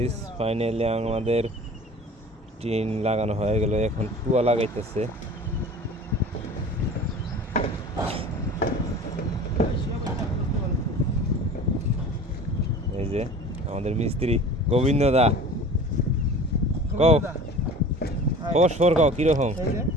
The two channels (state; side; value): normal; both; correlation 0.41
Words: finally আমাদের টিন লাগানো হয়ে গেল। এখন টুয়া লাগাইতেছে। এই যে আমাদের মিস্ত্রি গোবিন্দ দা, কও খবর কও কিরকম?